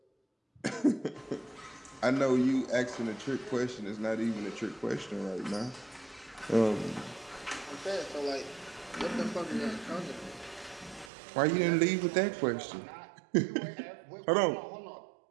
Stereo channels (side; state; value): left; drops out; at 11.1 s